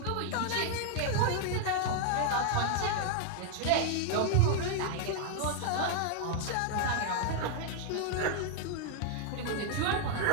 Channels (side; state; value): both; different; correlation 0.00